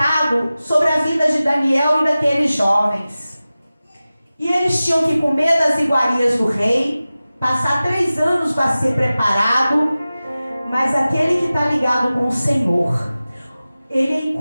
sobre a vida de Daniel e daqueles jovens. E eles tinham que comer das iguarias do rei, passar 3 anos para ser preparado, mas aquele que está ligado com o Senhor, ele é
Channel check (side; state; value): both; inverted; correlation -0.96